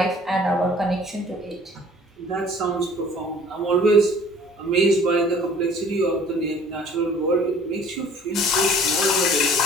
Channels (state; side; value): normal; both; correlation 0.52